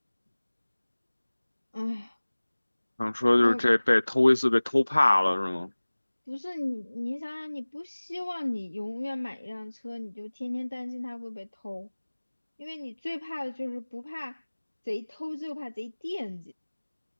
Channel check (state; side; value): inverted; both; correlation -1.00